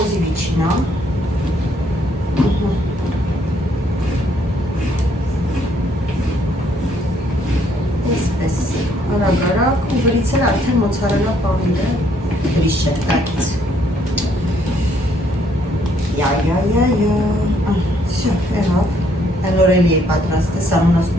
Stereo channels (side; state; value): both; normal; correlation 0.68